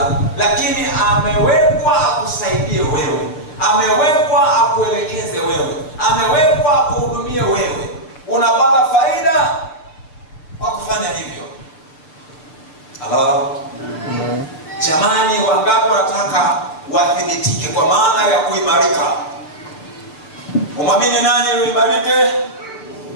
lakini amewekwa akusaidie wewe. Amewekwa akuelekeze wewe. Amewekwa akuhudumie wewe. Unapata faida kwa kufanya hivyo. Halo. Jamani, wangapi wanataka wathibitike kwa maana ya kuimarika? Umwamini nani ili uimarike?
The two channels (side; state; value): right; late; 6.6 ms